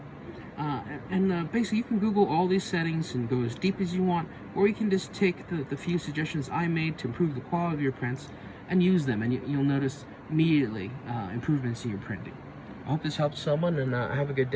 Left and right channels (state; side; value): identical; both; correlation 1.00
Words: basically you can Google all these settings and go as deep as you want, or you can just take the few suggestions I made to improve the quality of your prints and use them, and you'll notice immediately improvements in your printing. I hope this helps someone, and have a good